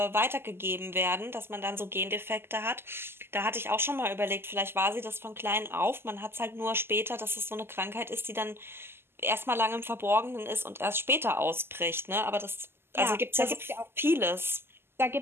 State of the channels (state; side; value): late; left; 0.12 ms